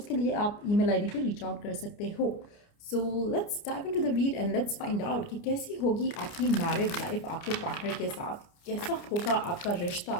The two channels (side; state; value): right; late; 29 ms